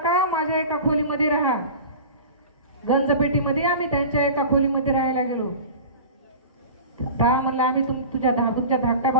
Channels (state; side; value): inverted; both; correlation -0.35